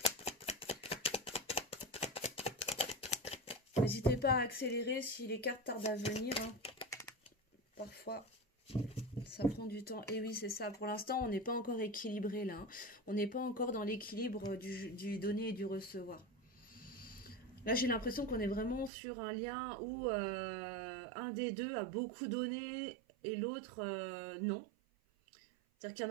N'hésitez pas à accélérer si les cartes tardent à venir. Hein. Parfois, ça prend du temps. Et oui, c'est ça. Pour l'instant, on n'est pas encore équilibré là. Hein. On n'est pas encore dans l'équilibre du donner et du recevoir. Là, j'ai l'impression qu'on est vraiment sur un lien où un des deux a beaucoup donné et l'autre non. C'est-à-dire qu'il y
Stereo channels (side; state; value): left; drops out; at 18.9 s